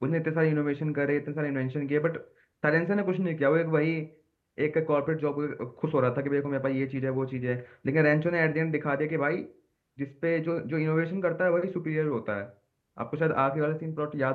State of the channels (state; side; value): identical; both; correlation 1.00